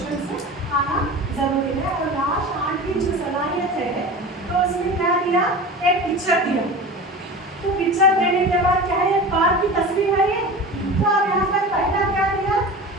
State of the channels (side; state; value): both; normal; correlation 0.33